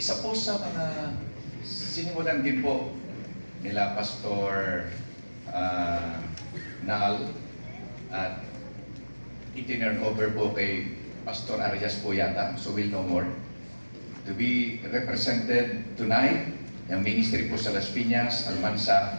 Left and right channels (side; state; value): both; inverted; correlation -1.00